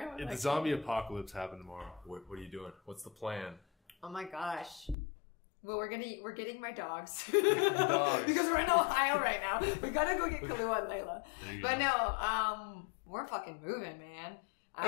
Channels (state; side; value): drops out; right; at 5.0 s